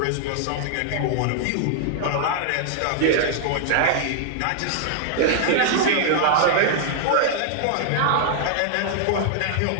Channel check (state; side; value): different; both; correlation -0.01